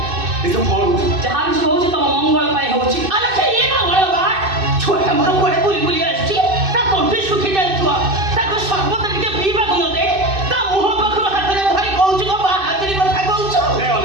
ଏସବୁ କଣ ହଉଛି? ଯାହା କିଛି ହଉଛି ତମ ମଙ୍ଗଳ ପାଇଁ ହଉଛି। ଆଲୋ ସେ ଇଏ ମଙ୍ଗଳ ବା ଛୁଆଟା ମୋର କୁଆଡ଼େ ବୁଲି ବୁଲି ଆସିଛି, ତା ତଣ୍ଟି ଶୁଖି ଯାଇଥିବ, ତାକୁ ସର୍ବତ ଟିକେ ପିଇବାକୁ ନ ଦେ, ତା ମୁହଁ ପାଖରୁ ହାତରେ ଧରି କହୁଛୁ କଣ ବାହାଦୁରୀ କଥା କହୁଛୁ? ଏ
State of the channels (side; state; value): left; late; 2.6 ms